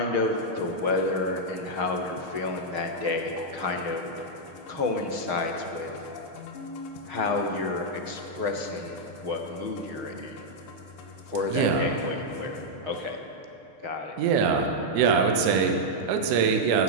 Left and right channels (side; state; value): left; late; 6.5 ms